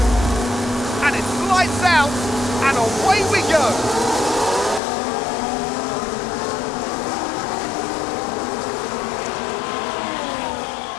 And it's lights out, and away we go.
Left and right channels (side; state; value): right; drops out; at 4.8 s